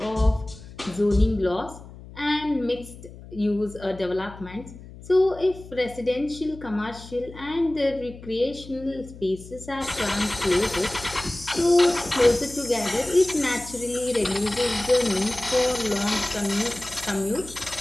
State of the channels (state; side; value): noise; left; hum, 17 dB below the sound